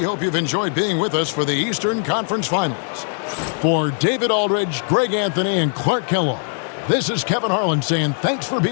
hope you've enjoyed being with us for the Eastern Conference Finals. For David Aldridge, Greg Anthony, and Clark Kellogg, this is Kevin Harlan saying thanks for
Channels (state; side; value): silent; right; 65 dB below the other